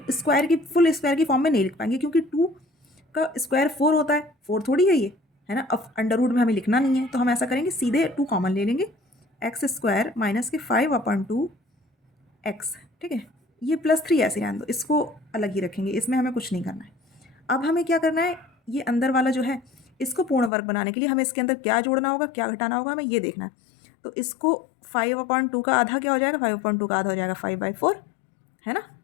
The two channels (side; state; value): right; drops out; at 20.5 s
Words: स्क्वायर की, फुल स्क्वायर की फॉर्म में नहीं लिख पाएंगे, क्योंकि 2 का स्क्वायर 4 होता है, 4 थोड़ी है ये, है ना। अब अंडर रूट में हमें लिखना नहीं है, तो हम ऐसा करेंगे, सीधे 2 कॉमन ले लेंगे, एक्स स्क्वायर माइनस के 5/2 x। ठीक है, ये प्लस 3 ऐसे रहने दो, इसको अलग ही रखेंगे, इसमें हमें कुछ नहीं करना है। अब हमें क्या करना है, ये अंदर वाला जो है, इसको पूर्ण वर्ग बनाने के लिए हमें इसके अंदर क्या जोड़ना होगा, क्या घटाना होगा, हमें ये देखना है। तो इसको 5/2 का आधा क्या हो जाएगा, 5/2 का आधा हो जाएगा 5/4, है ना,